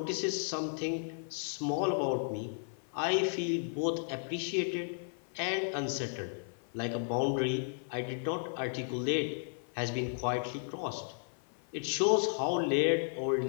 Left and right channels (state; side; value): silent; right; 55 dB below the other